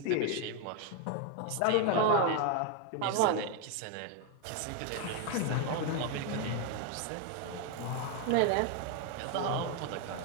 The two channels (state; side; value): different; both; correlation 0.01